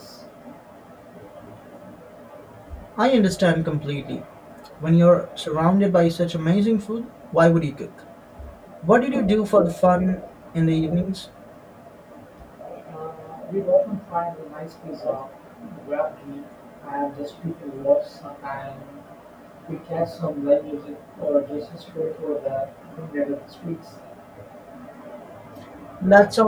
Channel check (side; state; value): both; identical; correlation 1.00